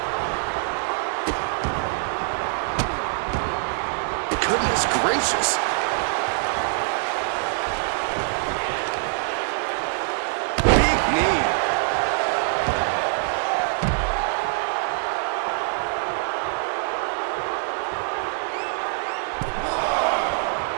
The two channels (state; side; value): silent; left; 61 dB below the other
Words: Goodness gracious. Big knee.